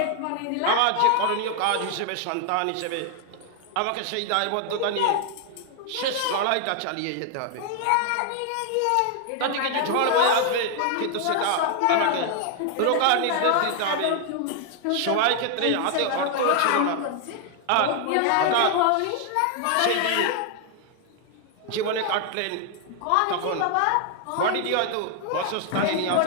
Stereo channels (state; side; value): different; both; correlation 0.00